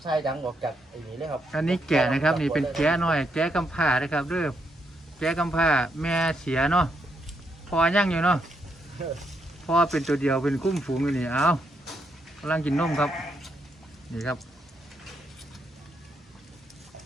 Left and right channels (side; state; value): both; normal; correlation 0.78